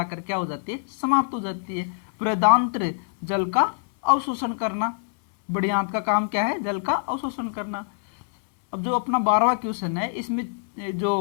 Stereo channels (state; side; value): silent; right; digital silence